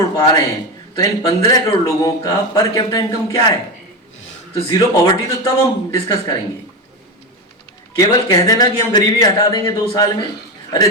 पा रहे हैं तो इन 15 करोड़ लोगों का पर कैपिटा इनकम क्या है? तो जीरो पॉवर्टी तो तब हम डिस्कस करेंगे। केवल कह देना कि हम गरीबी हटा देंगे 2 साल में, अरे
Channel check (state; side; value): normal; both; correlation 0.17